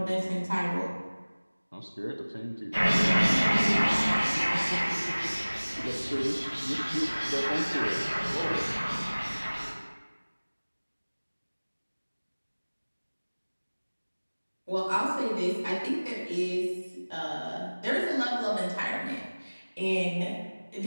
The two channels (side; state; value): both; inverted; correlation -1.00